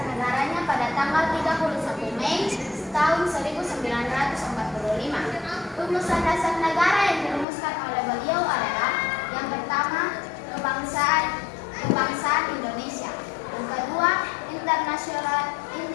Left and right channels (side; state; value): right; drops out; at 7.5 s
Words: negaranya pada tanggal 31 Mei tahun 1945. Rumusan dasar negara yang dirumuskan oleh beliau adalah yang pertama, kebangsaan Indonesia. Yang kedua,